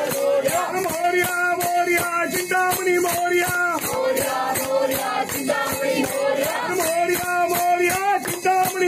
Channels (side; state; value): both; identical; correlation 1.00